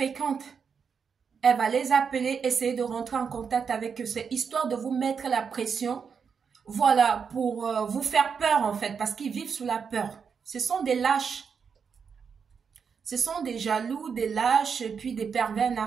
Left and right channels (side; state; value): left; quieter; 6.3 dB